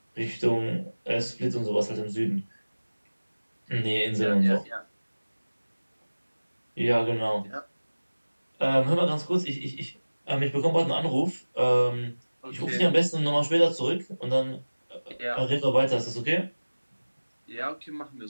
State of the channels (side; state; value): both; inverted; correlation -1.00